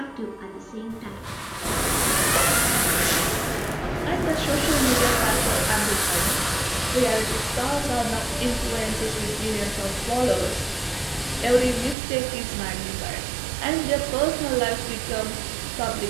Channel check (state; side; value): drops out; left; at 12.0 s